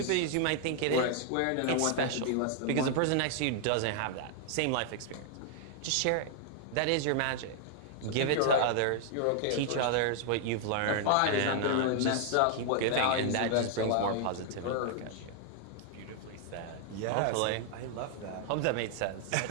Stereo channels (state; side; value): different; both; correlation 0.00